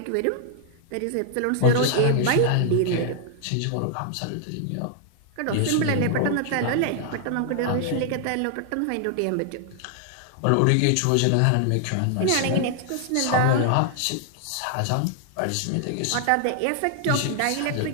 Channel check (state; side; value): different; both; correlation 0.00